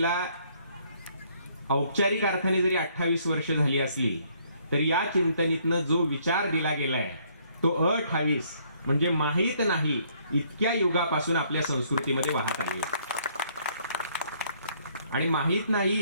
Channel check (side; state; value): both; inverted; correlation -0.66